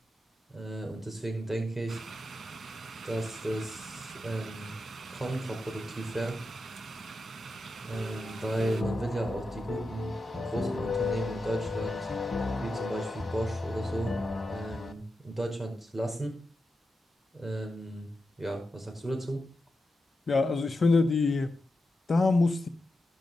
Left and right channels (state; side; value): normal; both; correlation 0.89